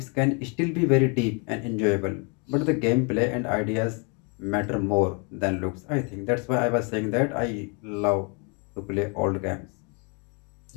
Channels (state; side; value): quieter; right; 35.0 dB